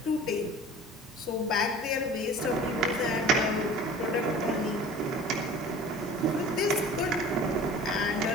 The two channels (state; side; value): normal; both; correlation 0.42